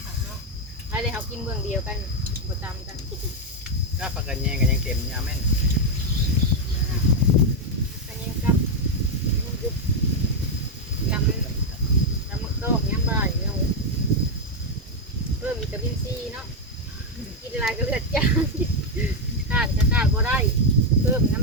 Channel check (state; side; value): normal; both; correlation 0.02